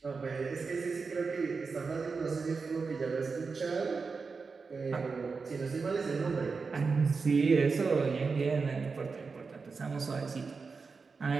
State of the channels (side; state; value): left; quieter; 4.7 dB